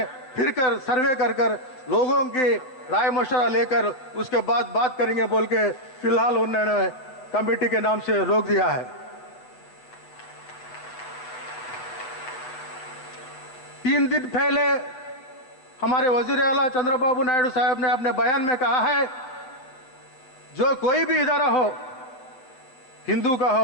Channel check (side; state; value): right; late; 7.8 ms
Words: फिरकर सर्वे कर लोगों की राय मशवरा लेकर उसके बाद बात करेंगे बोल के फिलहाल उन्होंने कमेटी के नाम से रोक दिया है। 3 दिन पहले हमारे वजीर आला चंद्रबाबू नायडू साहब ने अपने बयान में कहा है जो कोई भी इदारा हो, हिंदू का